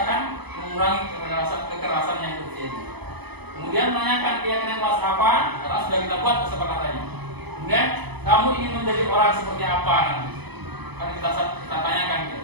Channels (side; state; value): left; late; 0.99 ms